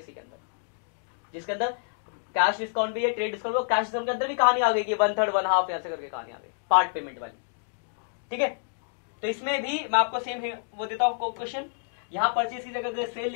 इसी के अंदर, जिसके अंदर कैश डिस्काउंट भी है, ट्रेड डिस्काउंट, कैश डिस्काउंट के अंदर भी कहानी आ गई कि 1/3, 1/2 ऐसे करके कहानी आ गई, पार्ट पेमेंट वाली, ठीक है। तो इसमें भी मैं आपको सेम वो देता हूं क्वेश्चन, यहां परचेज की जगह सेल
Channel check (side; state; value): right; silent; digital silence